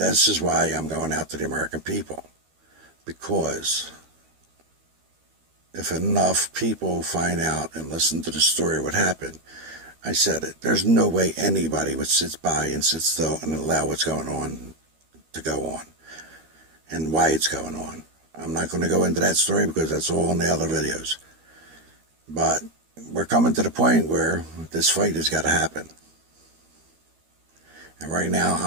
is why I'm going out to the American people. Because if enough people find out and listen to the story of what happened, I said it, there's no way anybody would sit by and sit still and allow what's going on to go on and why it's going on. I'm not going to go into that story because that's all in the other videos. But we're coming to the point where this fight has got to happen. And right now,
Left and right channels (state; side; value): late; left; 13 ms